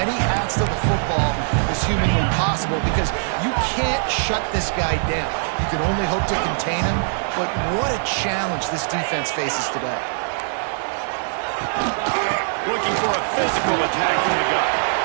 hats to the football as humanly possible because you can't shut this guy down. You can only hope to contain him, but what a challenge this defense faces today. Looking for a physical attack from the gun.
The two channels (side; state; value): left; silent; digital silence